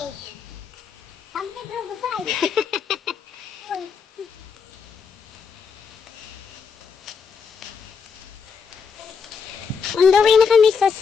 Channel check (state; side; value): quieter; right; 5.9 dB